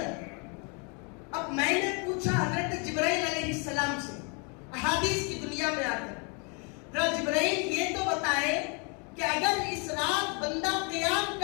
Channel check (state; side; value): quieter; right; 34.7 dB